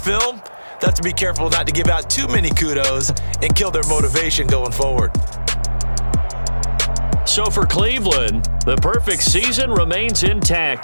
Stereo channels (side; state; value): both; inverted; correlation -1.00